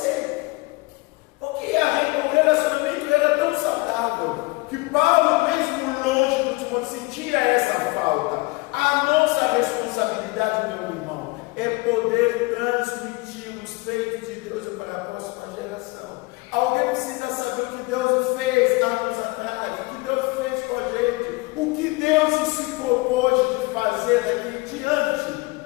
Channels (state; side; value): quieter; right; 24.1 dB